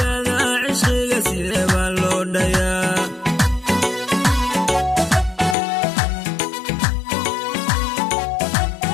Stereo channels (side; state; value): right; drops out; at 5.6 s